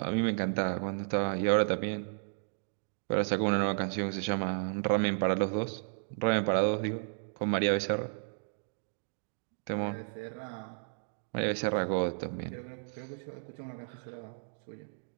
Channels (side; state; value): left; silent; digital silence